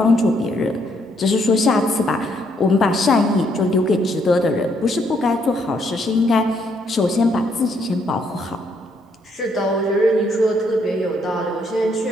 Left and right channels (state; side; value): normal; both; correlation 0.72